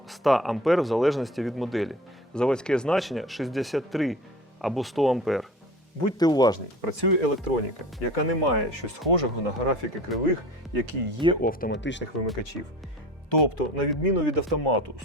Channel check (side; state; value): both; normal; correlation 0.39